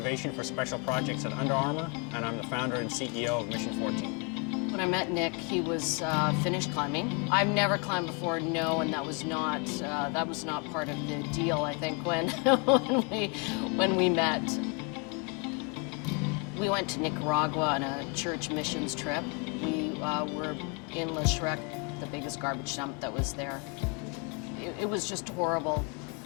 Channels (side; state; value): right; quieter; 33.1 dB